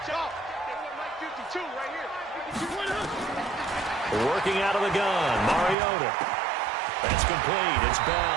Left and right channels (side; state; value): left; drops out; at 5.8 s